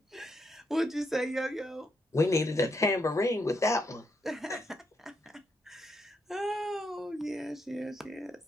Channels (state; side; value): normal; both; correlation 0.79